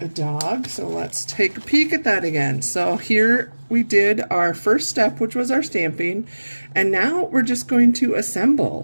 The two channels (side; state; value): both; inverted; correlation -1.00